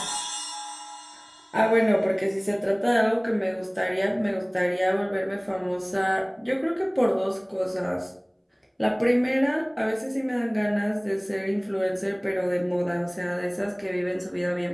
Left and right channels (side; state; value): both; identical; correlation 1.00